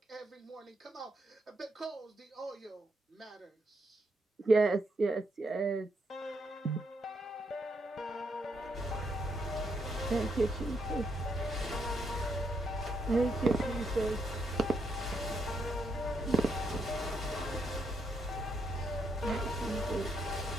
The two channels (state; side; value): normal; both; correlation 0.78